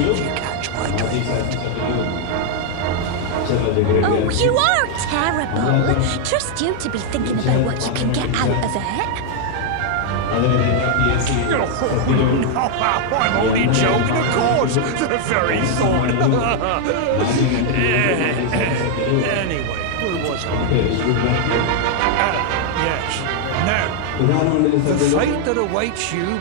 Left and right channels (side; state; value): both; different; correlation 0.00